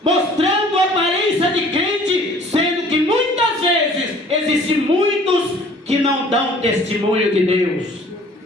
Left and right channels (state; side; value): normal; both; correlation 0.52